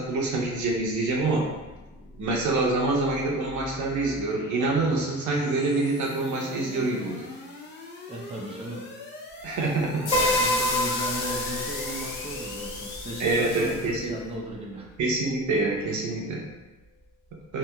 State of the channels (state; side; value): normal; both; correlation 0.32